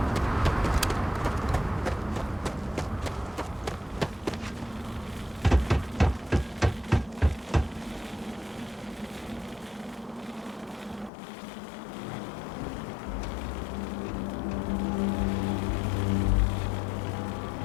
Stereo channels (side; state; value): right; drops out; at 11.1 s